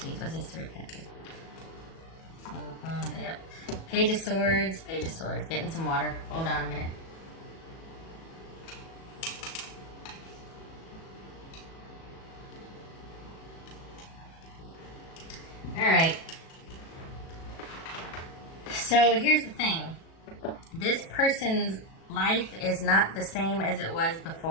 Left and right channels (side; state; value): right; late; 37 ms